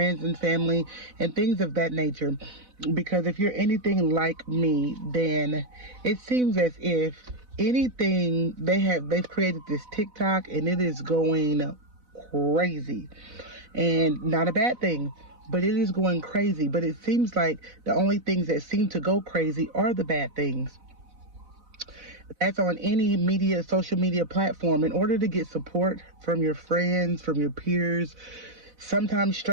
and family and things of that nature. Because if you're anything like me, then it seems as if anything they've created this TikTok and it is going crazy. And not a bad thing, but it is going crazy. But it seems like the only things that seem to go crazy are the bad things. That's on any social media platform. In order to get support from your friends, from your peers, sometimes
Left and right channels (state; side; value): late; left; 4.0 ms